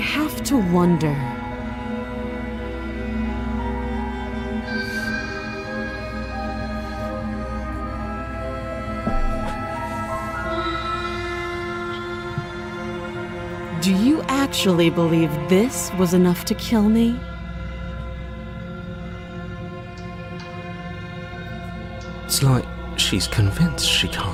to wonder. Do you actually believe this was enough to kill me? It's like she's convinced she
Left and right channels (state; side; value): identical; both; correlation 1.00